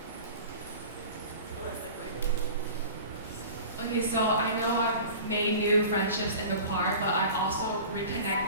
Okay, so I know I've made new friendships in the choir, but I've also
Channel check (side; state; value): both; inverted; correlation -0.39